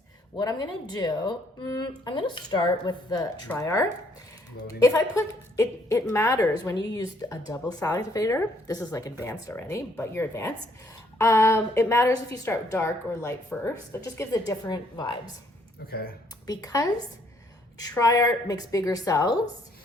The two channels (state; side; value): normal; both; correlation 0.67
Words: What I'm gonna do, I'm gonna start with the Tri-Art. Loading. If I put, it matters when you use a double cell activator. This is like advanced already, but you're advanced. It matters if you start dark or light first. It just gives it different vibes. Okay. Because Tri-Art makes bigger cells,